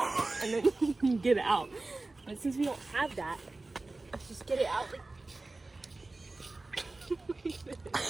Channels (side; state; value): left; quieter; 3.2 dB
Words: then you can get it out. But since we don't have that, let's just get it out.